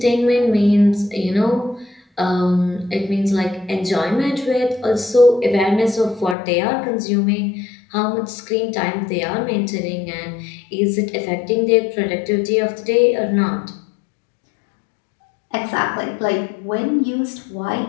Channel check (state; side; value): drops out; right; at 6.4 s